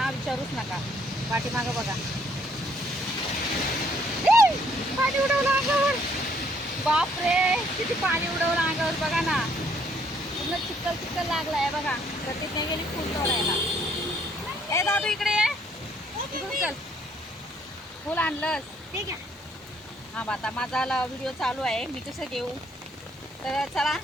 विचारूच नका. पाठीमागं बघा, पाणी उडवलं अंगावर. बापरे, किती पाणी उडवलं अंगावर बघा ना. पूर्ण चिखल चिखल लागलाय बघा. प्रतिज्ञा गेली फुल तोडायला. ए दादू इकडे ये, इकडून चल. फुल आणलंस? ठीक आहे. हां, आता माझा व्हिडिओ चालू आहे, मी कसं घेऊ. तर चला,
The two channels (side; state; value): both; normal; correlation 0.66